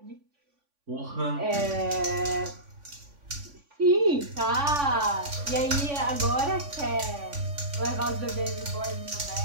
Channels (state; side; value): late; left; 3.5 ms